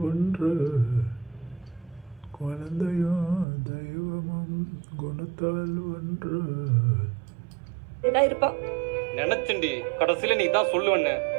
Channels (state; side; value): drops out; left; at 3.5 s